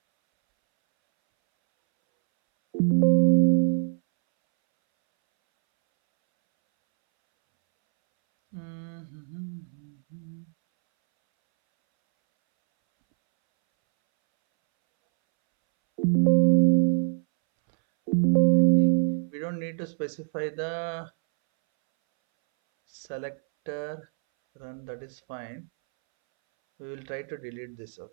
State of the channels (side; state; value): left; silent; 61 dB below the other